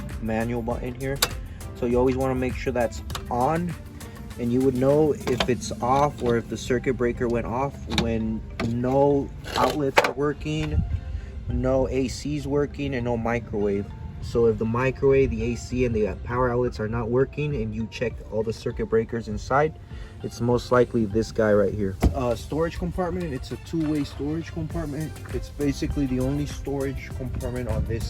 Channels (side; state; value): both; identical; correlation 1.00